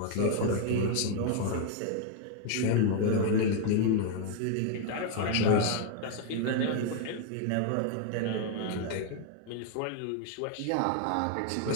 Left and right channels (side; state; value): both; different; correlation 0.00